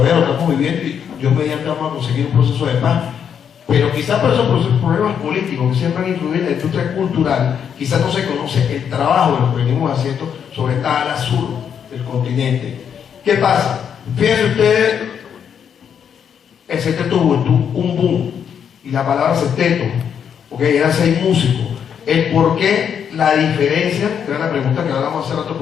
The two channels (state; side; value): quieter; right; 7.9 dB